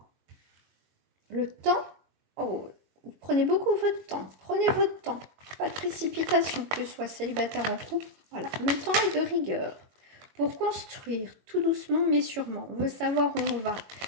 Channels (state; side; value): late; left; 22 ms